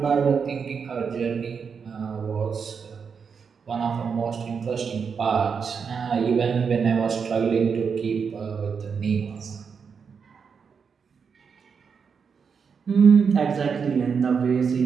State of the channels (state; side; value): quieter; left; 6.1 dB